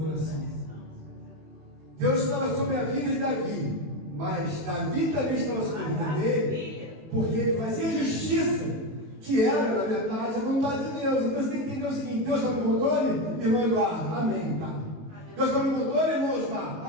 coração. Deus estava sobre a vida de Davi, mas Davi também estava sobre a vida dele, porque ele fazia justiça, que era, na verdade, a vontade de Deus. Então você tem que entender o seguinte: Deus está no controle, irmão Eduardo, amém, tá? Deus está no controle, irmão Osmar,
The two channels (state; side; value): late; left; 19 ms